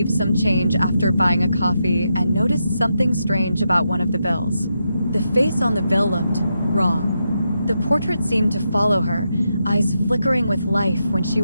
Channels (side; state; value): both; inverted; correlation -0.84